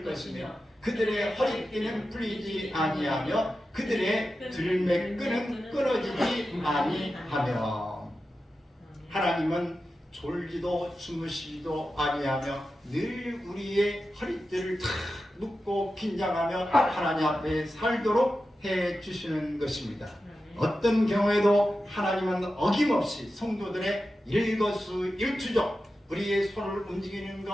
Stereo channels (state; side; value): normal; both; correlation 0.92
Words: 것이며 그들의 허리띠는 풀리지 아니하며 그들의 들매끈은 끊어지지 아니하며. 하나님은 졸지도 주무시지도 아니하며 늘 우리의 허리띠를 탁 묶고 긴장하며 하나님 앞에 살도록 해주시는 것입니다. 어떤 경우에도 하나님은 어김없이 성도들의 일거수일투족 우리의 손을 움직이는